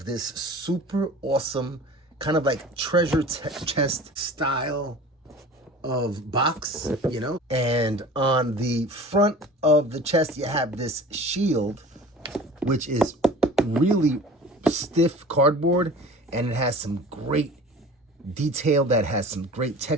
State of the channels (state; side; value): normal; both; correlation 0.41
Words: this super awesome, kind of like treasure chest style of box, you know? And on the front of the chest, you have this shield, which is really stiff cardboard, and it has some great detail that has some great